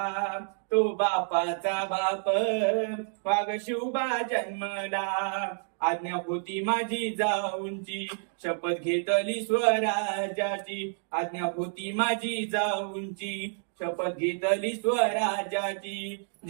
तो बापाचा बाप वाघ शिवबा जन्मला. आज्ञा होती माझी जाऊंची शपथ घेतली स्वराज्याची. आज्ञा होती माझी जाऊंची शपथ घेतली स्वराज्याची.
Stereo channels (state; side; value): silent; left; digital silence